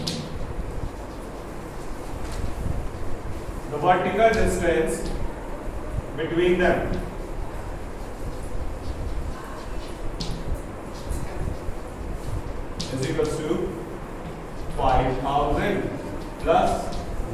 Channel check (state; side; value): identical; both; correlation 1.00